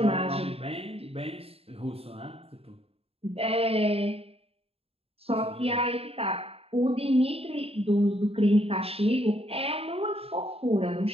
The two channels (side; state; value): left; late; 0.28 ms